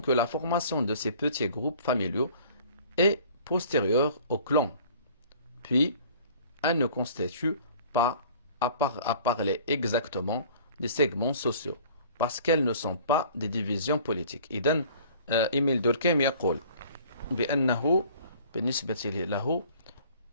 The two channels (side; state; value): both; inverted; correlation -0.50